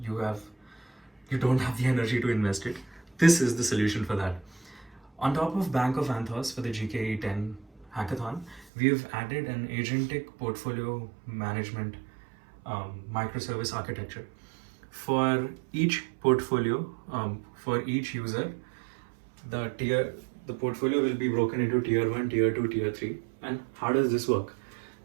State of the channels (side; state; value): left; drops out; at 8.7 s